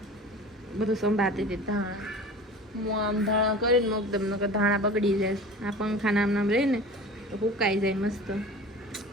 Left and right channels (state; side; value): normal; both; correlation 0.38